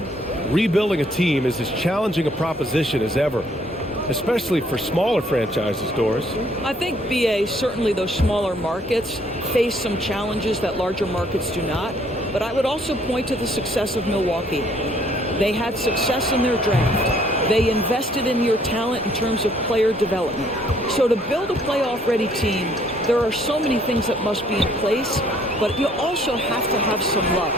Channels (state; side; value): normal; both; correlation 0.64